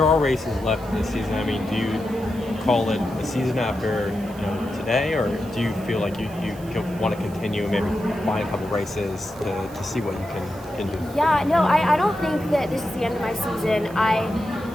are races left this season. I mean, do you call it a season after today, or do you feel like you want to continue and maybe find a couple races to see what you can do? Yeah, no, I don't think that this is the end of my season.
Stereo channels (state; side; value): noise; right; hiss, 22 dB below the sound